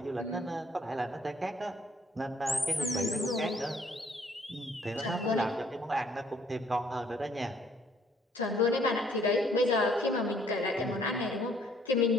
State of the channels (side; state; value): both; normal; correlation 0.63